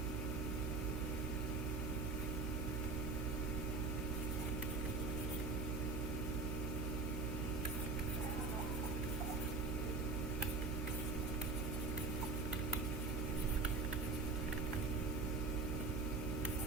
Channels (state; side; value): noise; right; hum, 1 dB below the sound